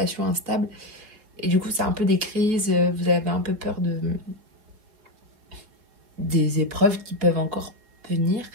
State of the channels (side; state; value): left; late; 4.9 ms